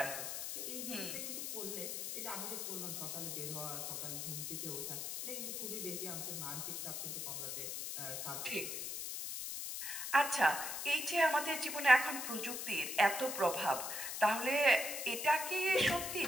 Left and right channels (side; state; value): left; noise; hiss, 4 dB below the sound